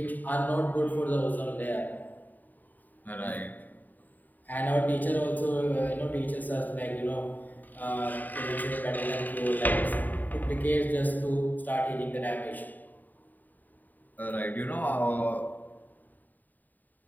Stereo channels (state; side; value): late; right; 0.085 ms